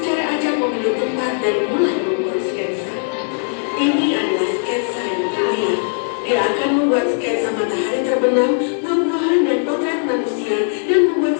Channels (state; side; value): silent; right; 67 dB below the other